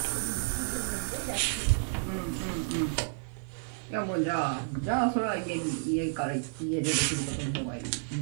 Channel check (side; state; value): left; silent; 57 dB below the other